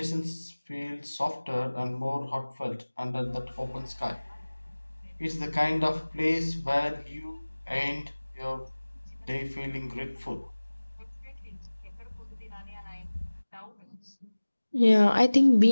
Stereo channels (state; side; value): inverted; both; correlation -1.00